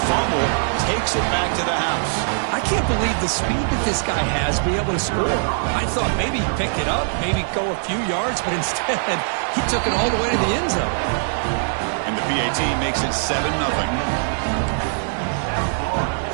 fumble. He's takes it back to the house. I can't believe the speed that this guy has to be able to score. I thought maybe he'd pick it up, maybe go a few yards, but instead he took it all the way to the end zone. And the PAT makes it 7-0.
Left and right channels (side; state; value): left; silent; 59 dB below the other